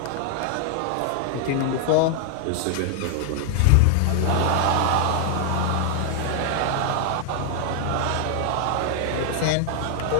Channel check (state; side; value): different; both; correlation 0.00